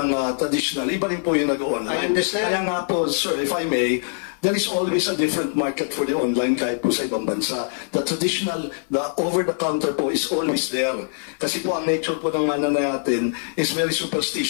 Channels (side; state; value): right; silent; 57 dB below the other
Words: traditional. Iba rin po yung nag-online. I understand. Kaya nga po, sir, if I may, there is always a different market for the online kahit po sa ibang bansa. The traditional, the over-the-counter po is always there. Kasi po ang nature po ng mana natin is very